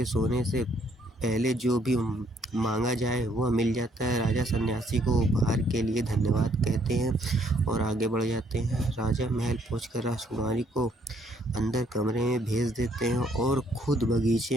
सोने से पहले जो भी मांगा जाए वह मिल जाता है। राजा सन्यासी को उपहार के लिए धन्यवाद कहते हैं और आगे बढ़ जाते हैं। राजा महल पहुंचकर राजकुमारी को अंदर कमरे में भेज देते हैं और खुद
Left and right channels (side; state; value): both; normal; correlation 0.67